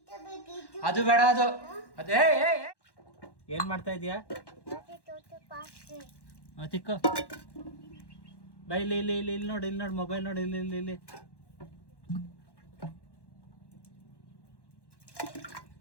ಅದು ಬೇಡ ಅದು ಅದೇ ಏನು ಮಾಡ್ತಾ ಇದೀಯಾ? ತಿಕ್ಕೋ ಬೈ ಇಲ್ಲಿ ಇಲ್ಲಿ ಇಲ್ಲಿ ಇಲ್ಲಿ ನೋಡಿ ಇಲ್ಲಿ ನೋಡಿ ಮೊಬೈಲ್ ನೋಡಿ ಇಲ್ಲಿ ಇಲ್ಲಿ ಇಲ್ಲಿ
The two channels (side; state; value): right; late; 1.1 ms